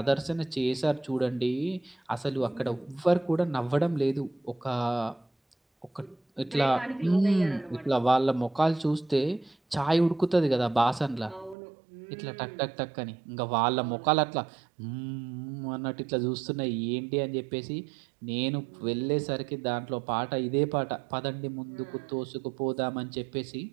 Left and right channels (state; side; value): drops out; left; at 11.6 s